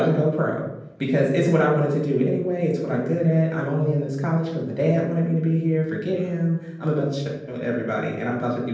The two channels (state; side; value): identical; both; correlation 1.00